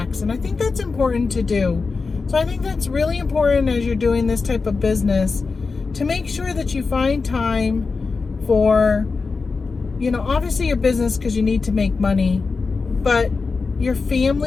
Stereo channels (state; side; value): quieter; right; 4.4 dB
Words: And I think that's important to do. So I think that's really important as you're doing this type of business, to make sure that you find time for, obviously your business, because you need to make money, but your